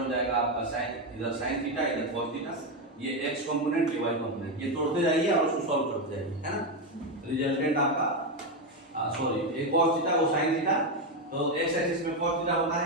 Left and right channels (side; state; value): both; normal; correlation 0.09